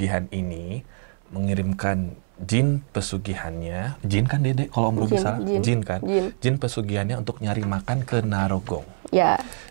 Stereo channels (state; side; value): silent; left; 62 dB below the other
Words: ini mengirimkan jin pesugihannya. Jin kan Dede? Kalau Om Robi salah? Jin kan? Jin pesugihannya untuk nyari makan ke Narogong. Ya.